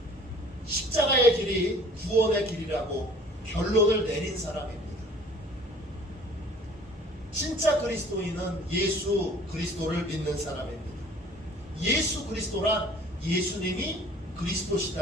십자가의 길이 구원의 길이라고 결론을 내린 사람입니다. 진짜 그리스도인은 예수 그리스도를 믿는 사람입니다. 예수 그리스도란 예수님이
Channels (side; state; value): both; normal; correlation 0.51